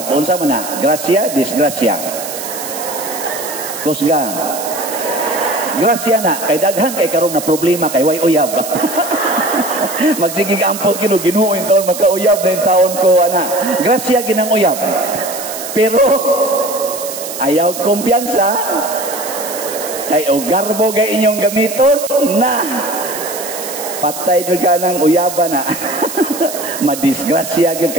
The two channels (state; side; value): noise; right; hiss, 8 dB below the sound